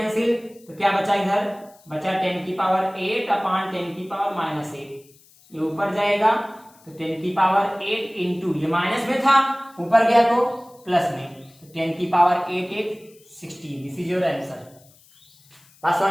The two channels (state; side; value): noise; left; hiss, 28 dB below the sound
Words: तो क्या बचा इधर बचा 10 की पावर 8 अपान 10 की पावर माइनस 8, ये ऊपर जाएगा, तो 10 की पावर 8 इंटू, ये माइनस में था ऊपर गया तो प्लस में, तो 10 की power 8 8 16, this is your answer. बात